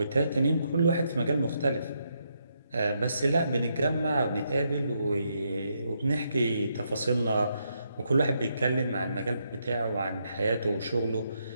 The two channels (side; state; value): both; inverted; correlation -0.79